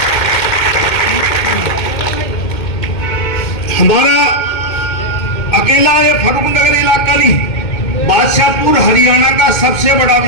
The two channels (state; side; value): late; right; 2.2 ms